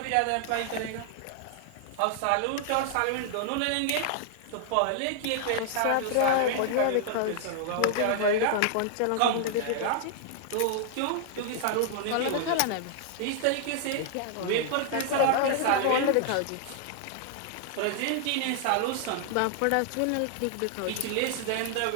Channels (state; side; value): different; both; correlation 0.00